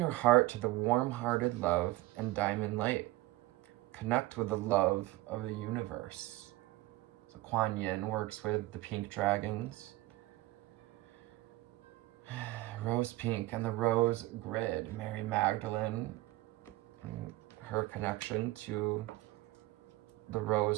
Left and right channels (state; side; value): quieter; left; 18.4 dB